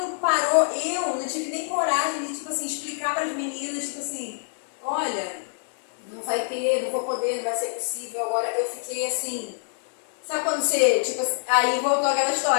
parou, eu não tive nem coragem de, tipo assim, explicar para as meninas, tipo assim, olha, não vai ter, não vou poder, não vai ser possível. Agora eu fiquei assim, sabe quando você, tipo, aí voltou aquela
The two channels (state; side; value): silent; right; digital silence